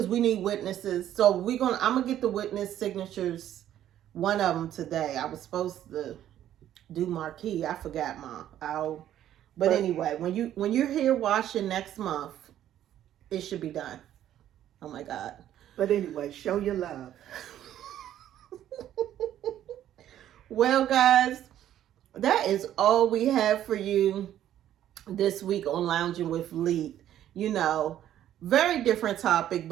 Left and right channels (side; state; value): left; quieter; 11.6 dB